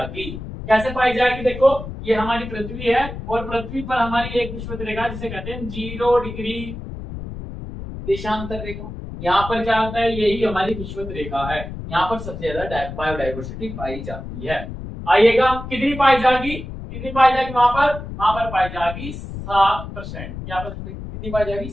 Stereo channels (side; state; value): left; noise; rumble, 9 dB below the sound